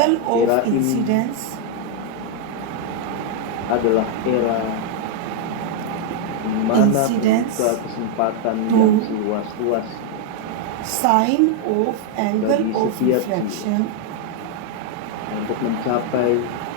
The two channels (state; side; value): different; both; correlation 0.00